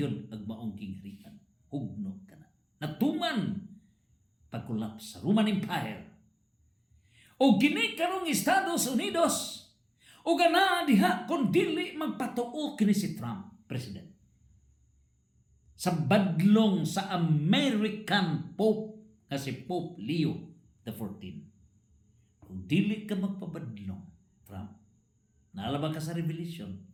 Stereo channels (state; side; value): identical; both; correlation 1.00